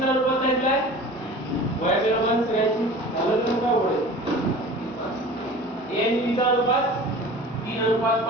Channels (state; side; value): normal; both; correlation 0.40